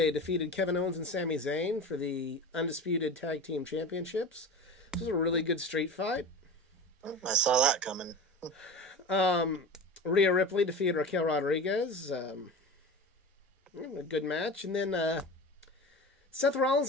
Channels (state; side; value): normal; both; correlation 0.31